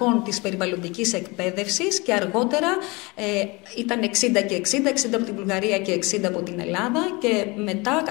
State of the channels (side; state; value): right; quieter; 25.6 dB